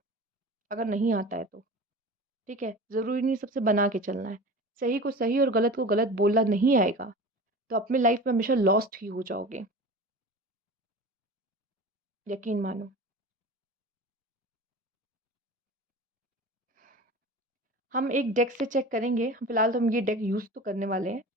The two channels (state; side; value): normal; both; correlation 0.35